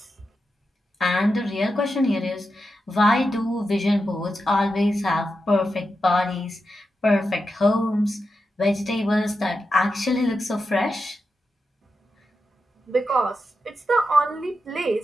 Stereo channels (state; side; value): normal; both; correlation 0.88